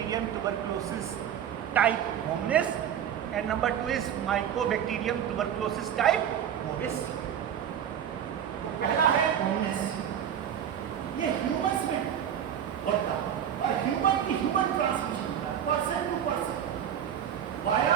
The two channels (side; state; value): left; quieter; 9.3 dB